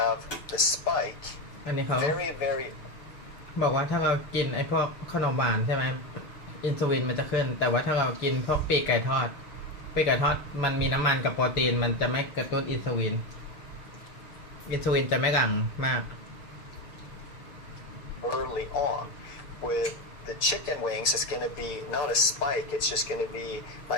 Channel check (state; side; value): late; right; 6.8 ms